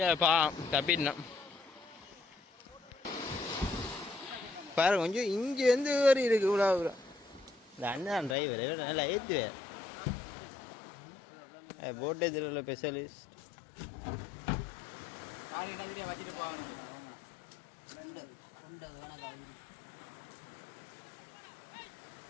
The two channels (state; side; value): drops out; right; at 8.3 s